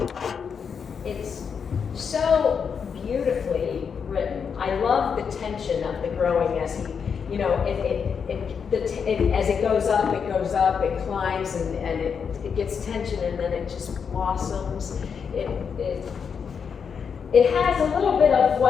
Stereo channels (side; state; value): right; quieter; 6.5 dB